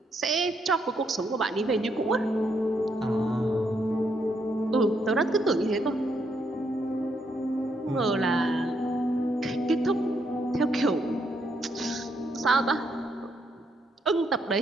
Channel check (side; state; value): both; normal; correlation 0.76